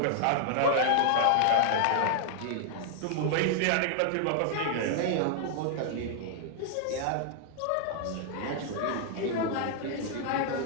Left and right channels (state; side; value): different; both; correlation -0.01